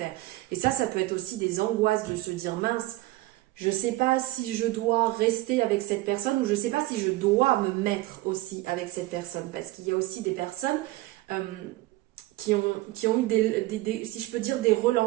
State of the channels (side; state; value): left; quieter; 18.5 dB